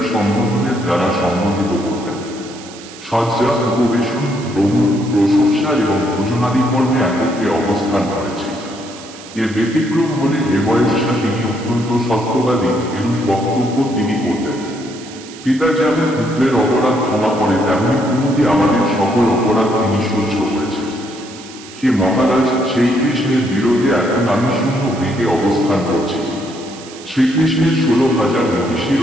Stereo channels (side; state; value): right; noise; hiss, 17 dB below the sound